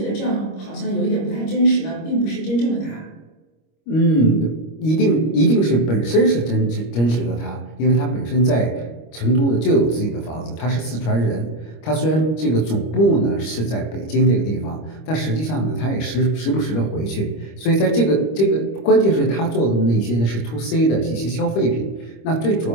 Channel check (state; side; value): late; right; 25 ms